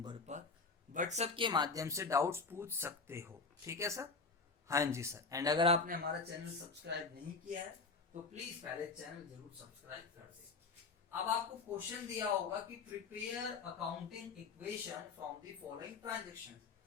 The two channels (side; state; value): right; quieter; 4.3 dB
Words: पर व्हाट्सएप के माध्यम से डाउट्स पूछ सकते हो। ठीक है सर, हाँ जी सर। एंड अगर आपने हमारा चैनल सब्सक्राइब नहीं किया है तो प्लीज पहले चैनल जरूर सब्सक्राइब कर दे। अब आपको क्वेश्चन दिया होगा कि prepare accounting equation from the following transaction.